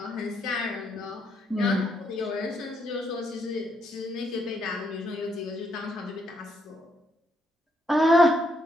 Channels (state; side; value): normal; both; correlation 0.75